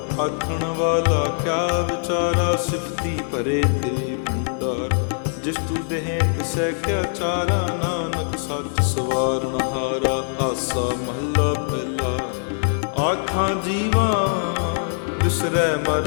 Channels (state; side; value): silent; right; digital silence